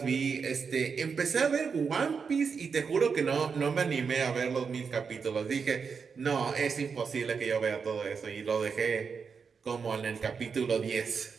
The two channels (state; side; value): quieter; left; 5.8 dB